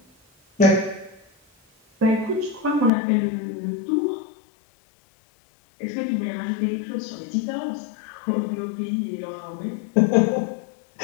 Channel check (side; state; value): right; drops out; at 2.9 s